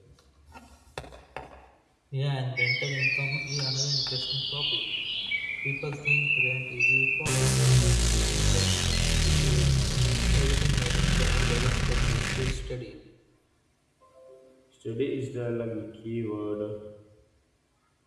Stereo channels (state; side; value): identical; both; correlation 1.00